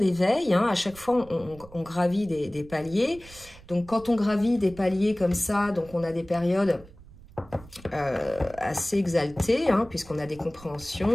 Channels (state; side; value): noise; right; rumble, 21 dB below the sound